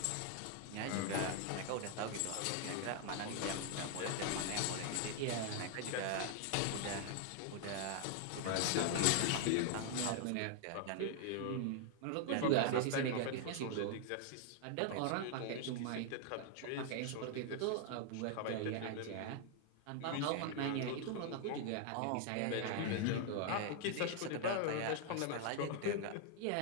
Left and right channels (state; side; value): different; both; correlation 0.00